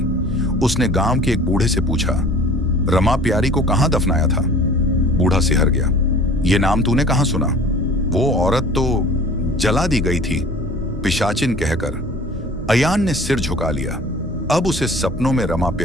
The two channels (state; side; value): normal; both; correlation 0.46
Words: उसने गांव के एक बूढ़े से पूछा, रमा प्यारी को कहां दफनाया था? बूढ़ा सिहर गया। ये नाम तूने कहां सुना? वो औरत तो जला दी गई थी, पिशाचिन कहकर। अयान ने सिर झुका लिया। अब उसे सपनों में रमा